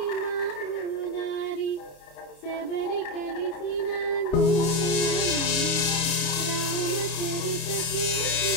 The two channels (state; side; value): late; right; 29 ms